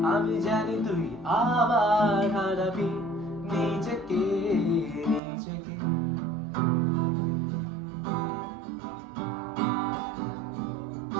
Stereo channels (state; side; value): drops out; left; at 5.2 s